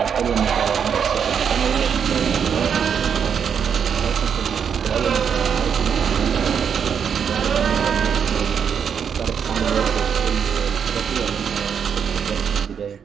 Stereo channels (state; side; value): quieter; left; 7.4 dB